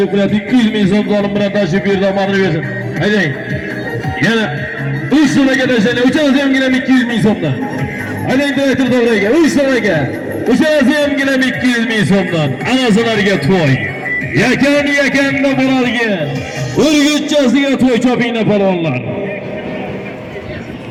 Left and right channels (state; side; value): identical; both; correlation 1.00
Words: 200 ming so'm zolim bilan tashib berdi, omonini bersin. Haydang. Yana 3 so'mga tashlaydi. Uchalasi ham 200 ming so'mdan. Haydang direktor to'g'riga 3 so'mga. Uçası hem gilem 200 bin so'mdan. Anasılarga to'y. Yakan-yakanda Muralga. Urgutchasiga to'y chopinglar palvonlar.